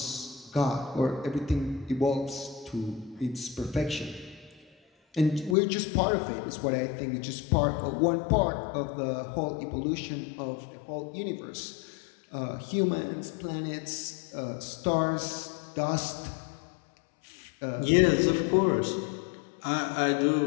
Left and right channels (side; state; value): right; drops out; at 5.6 s